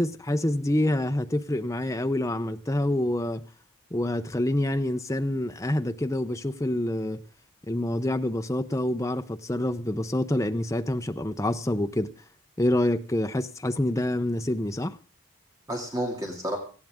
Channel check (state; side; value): normal; both; correlation 0.86